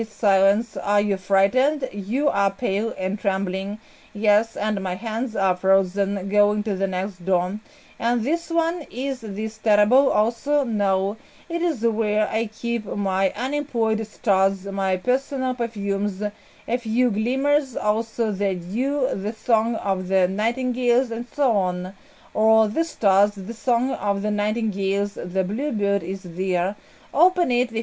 Silence. Are you frightened? You are pale and trembling. Yes, and my hands are frozen. Going to the next door. And this one, is this terrible also? No, it is where I keep my unemployed stars, my personal perfumes, a few glimmers, also the dew, the song of the nightingales, and so on. Or the stars, the song of the nightingales, the bluebird is there. Open it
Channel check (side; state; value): both; identical; correlation 1.00